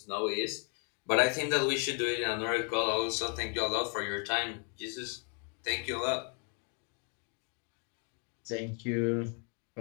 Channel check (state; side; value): quieter; right; 39.2 dB